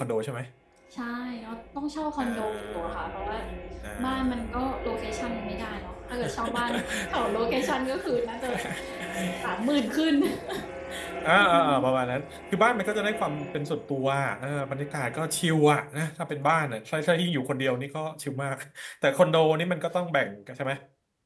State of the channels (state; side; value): identical; both; correlation 1.00